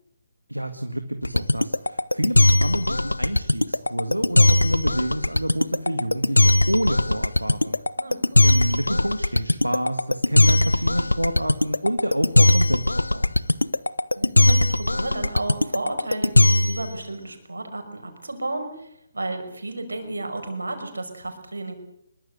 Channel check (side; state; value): both; inverted; correlation -0.98